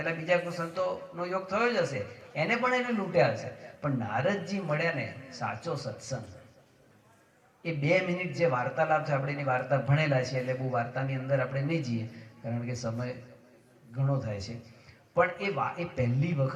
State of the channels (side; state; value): both; identical; correlation 1.00